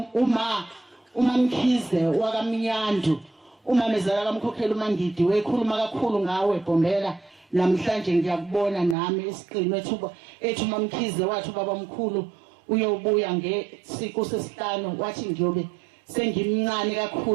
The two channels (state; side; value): drops out; left; at 9.0 s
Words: uma Mkhize wakaMnyandu umamezala kaMkhokheli uMangidi wekhuluma kakhulu ngawe Bhombela. Namhlanje ngiyakubona nami esiqinwe ethu uMamkhize wathi ubaba mkhulu uyobuya ngesiqo sesihlanu wathi ngiyobe sengimncane